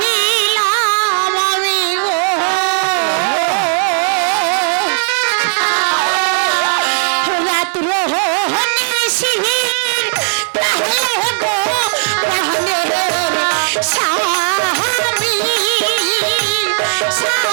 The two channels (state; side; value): silent; left; digital silence